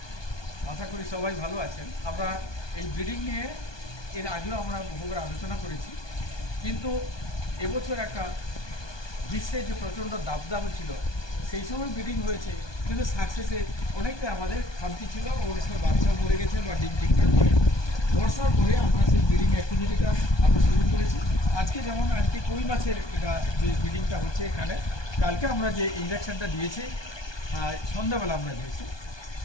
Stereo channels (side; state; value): right; late; 1.2 ms